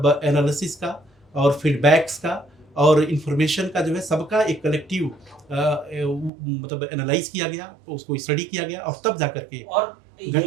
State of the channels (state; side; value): drops out; left; at 6.3 s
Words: एनालिसिस का और फीडबैक्स का और इन्फॉर्मेशन का जो है सबका एक कलेक्टिव मतलब एनालाइज़ किया गया, उसको स्टडी किया गया और तब जाकर के और ये